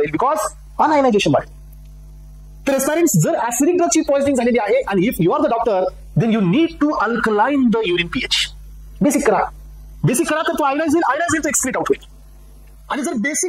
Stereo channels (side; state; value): both; identical; correlation 1.00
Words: बिकॉज अनआयोनायझेशन बाय. तर एस्पिरंट्स, जर ऍसिडिक ड्रगची पॉइझनिंग झालेली आहे आणि if you are the doctor then you need to alkaline the urine pH. Basic करा, बेसिक करा, तर तो आयोनाइज होईल तो एक्सक्रीट आउट होईल. आणि जर